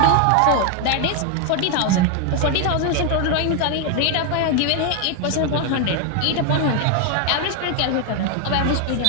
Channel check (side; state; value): both; different; correlation 0.01